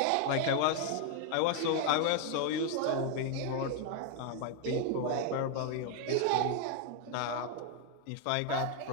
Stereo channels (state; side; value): different; both; correlation 0.00